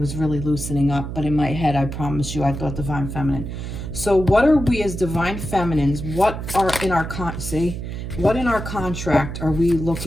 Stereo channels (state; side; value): noise; right; hum, 7 dB below the sound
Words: really loosening up. But in my head, I promise you, I thought divine feminine. So what are we as divine feminines? What are in our what in our contract are we